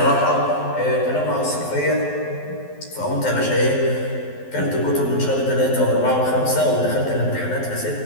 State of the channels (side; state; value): right; late; 12 ms